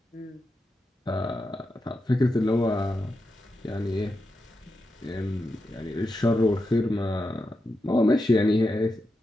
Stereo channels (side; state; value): both; normal; correlation 0.88